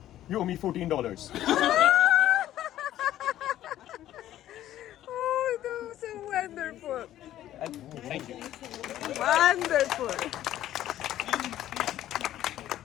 you owe me $14. Oh, that was so wonderful. Thank you. Wonderful.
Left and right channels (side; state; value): right; quieter; 12.9 dB